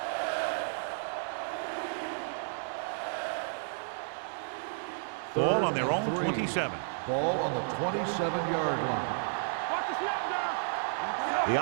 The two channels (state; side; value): silent; left; digital silence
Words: Ball on their own 27. Ball on the 27-yard line. Watch the snap now.